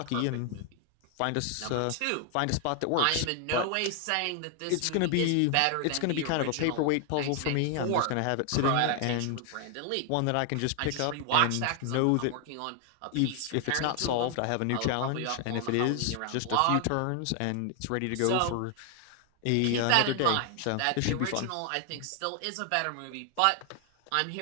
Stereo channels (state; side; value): different; both; correlation 0.00